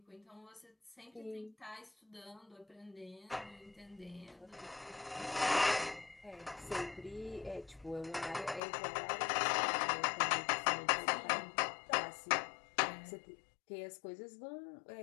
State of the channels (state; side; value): drops out; right; at 8.6 s